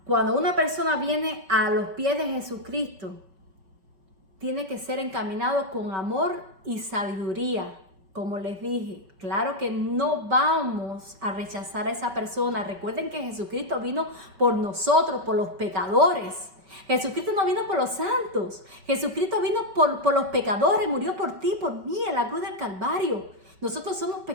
Cuando una persona viene a los pies de Jesucristo, tiene que ser encaminado con amor y sabiduría. Como les dije, claro que no vamos a rechazar a esa persona. Recuerden que Jesucristo vino por nosotros, por los pecadores. Jesucristo no vino por los santos. Jesucristo vino por los pecadores, murió por ti, por mí, en la cruz del Calvario. Nosotros somos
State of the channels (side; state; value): left; late; 5.3 ms